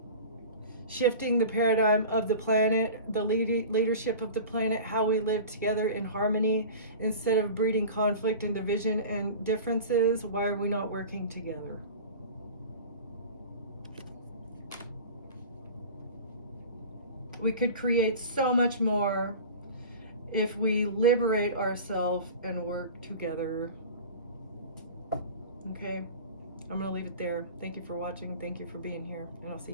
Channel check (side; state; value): both; inverted; correlation -0.36